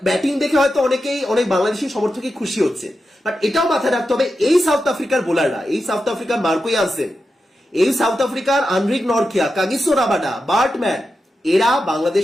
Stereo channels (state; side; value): normal; both; correlation 0.90